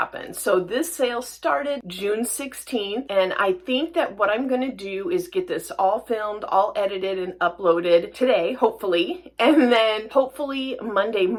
So this sale started June 16th, and I think that what I'm going to do is get this all filmed, all edited, and uploaded today, hopefully. And then hopefully Monday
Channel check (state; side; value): identical; both; correlation 1.00